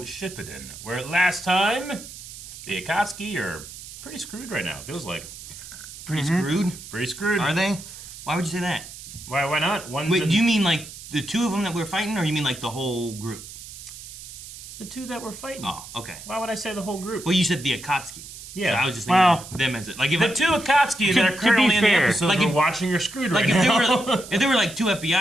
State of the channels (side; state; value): right; noise; hiss, 14 dB below the sound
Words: Shippuden, where last time the Akatsuki are pretty screwed right now. It feels like. Pretty screwed? Pretty screwed. Are they? Why would you say that? Why not? Wait, do you mean like the two of them that we're fighting, or you mean like the whole group? The two that we're fighting. Oh, okay. Why would I say the whole group? Well, you said the Akatsuki. Yeah. So I was just thinking of them as it. Like if the two Akatsuki that are currently in the episode like we're if, watching are screwed like right now. if there were like two